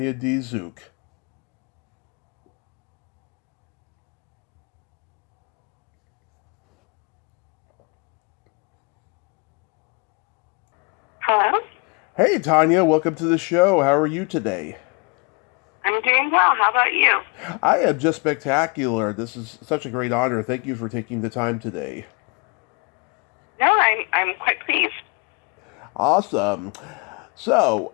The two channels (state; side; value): quieter; right; 32.4 dB